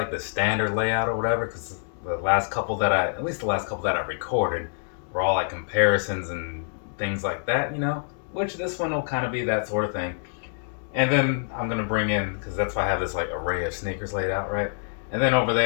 the standard layout or whatever, because at least the last couple that I recorded, were all like comparisons and things like that, which this one will kind of be that sort of thing. And then I'm going to bring in, because that's why I have this like array of sneakers laid out, right? And then over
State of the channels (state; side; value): silent; right; digital silence